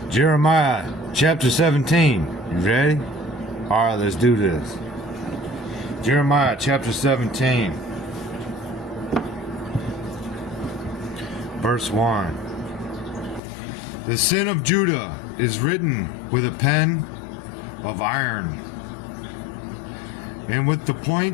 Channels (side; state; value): right; drops out; at 13.4 s